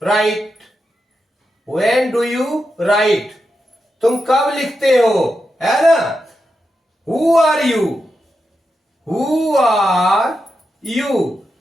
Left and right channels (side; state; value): both; normal; correlation 0.87